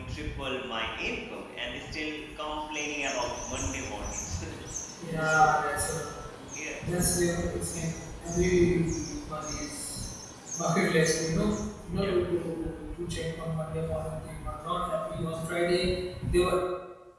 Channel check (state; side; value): identical; both; correlation 1.00